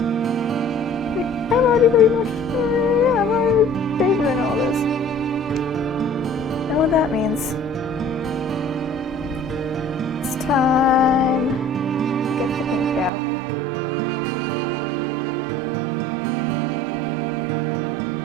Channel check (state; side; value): drops out; left; at 13.1 s